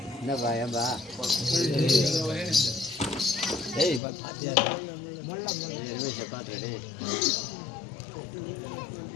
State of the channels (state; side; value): drops out; right; at 4.0 s